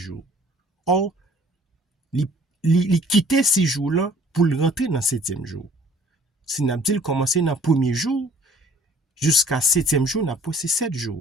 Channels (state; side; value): normal; both; correlation 0.54